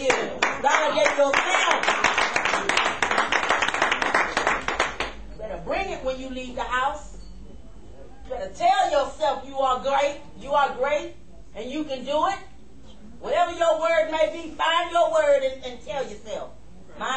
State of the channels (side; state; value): both; identical; correlation 1.00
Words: Validate yourself. You better bring it when you leave the house. You better tell yourself you are great, and you can do it. Whatever your word may be, find your word and tell yourself.